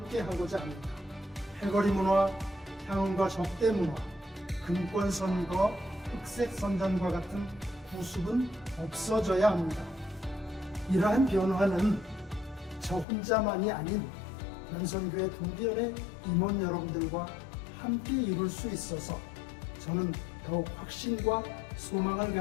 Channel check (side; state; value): right; drops out; at 13.1 s